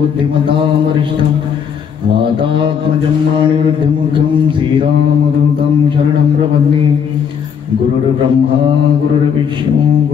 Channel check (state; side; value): quieter; right; 7.3 dB